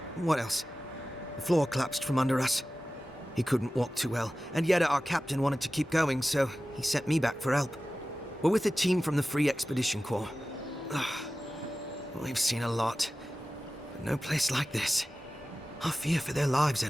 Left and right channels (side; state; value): both; normal; correlation 0.96